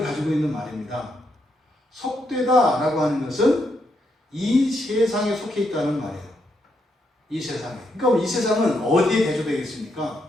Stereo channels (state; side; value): normal; both; correlation 0.79